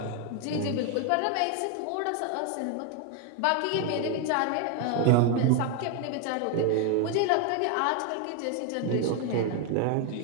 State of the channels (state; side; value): different; both; correlation 0.01